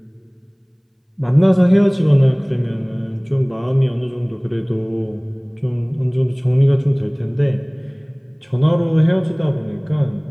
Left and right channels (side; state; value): both; identical; correlation 1.00